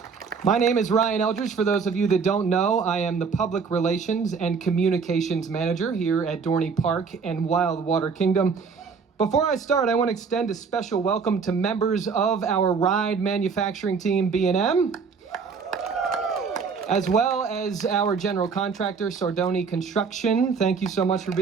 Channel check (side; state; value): left; quieter; 5.5 dB